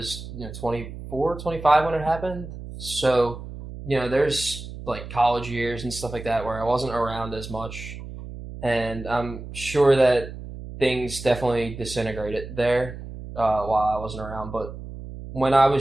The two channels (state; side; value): noise; right; hum, 11 dB below the sound